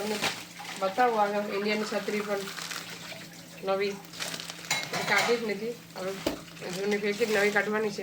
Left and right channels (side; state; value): both; identical; correlation 1.00